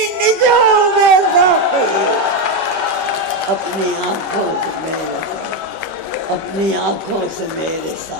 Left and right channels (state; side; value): late; left; 5.2 ms